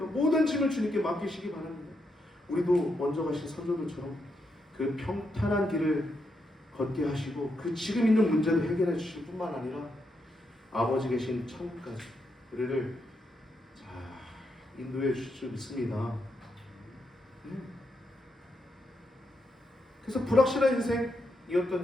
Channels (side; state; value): both; normal; correlation 0.81